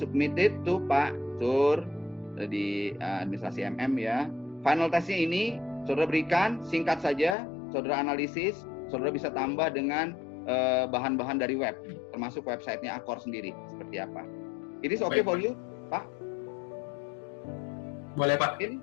to Pak Sur di administrasi MM ya. Final testnya ini saudara berikan, singkat saja, saudara analisis, saudara bisa tambah dengan bahan-bahan dari web, termasuk websitenya Accor sendiri seperti apa. It is okay for you, Pak? Boleh Pak.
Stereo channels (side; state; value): right; drops out; at 7.4 s